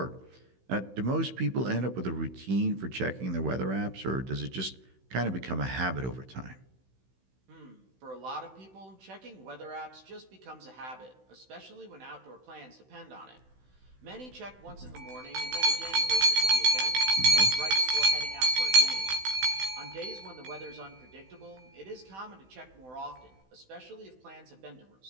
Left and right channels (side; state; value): left; late; 16 ms